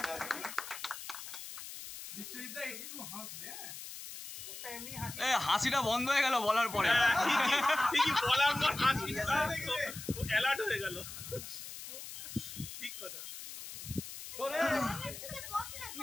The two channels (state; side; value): noise; left; hiss, 10 dB below the sound